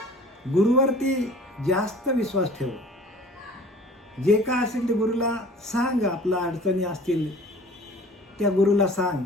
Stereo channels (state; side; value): normal; both; correlation 0.47